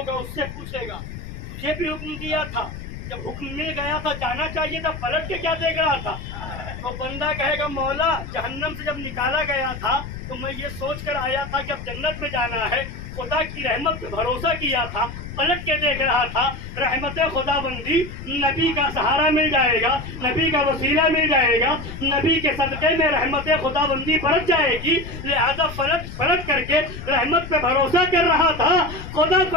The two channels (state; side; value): noise; left; rumble, 10 dB below the sound